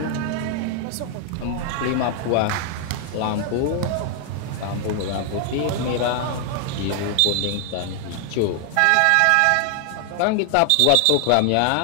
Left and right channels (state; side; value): different; both; correlation 0.00